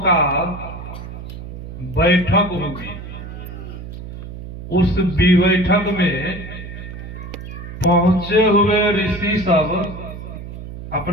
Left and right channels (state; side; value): noise; right; hum, 11 dB below the sound